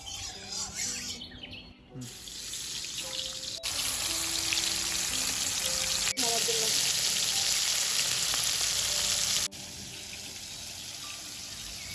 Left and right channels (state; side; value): identical; both; correlation 1.00